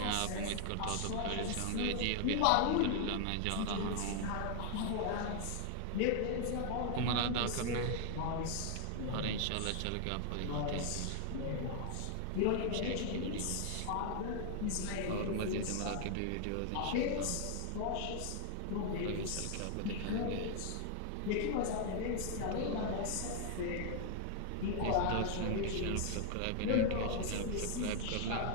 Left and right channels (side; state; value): both; different; correlation 0.00